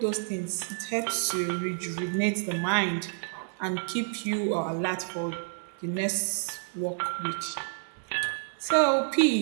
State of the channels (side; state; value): left; silent; 58 dB below the other